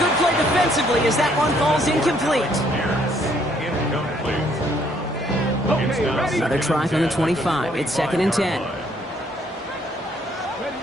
play defensively as that one falls incomplete. Okay, ready. Another try from the 25. It's 2nd and 10.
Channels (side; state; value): both; normal; correlation 0.66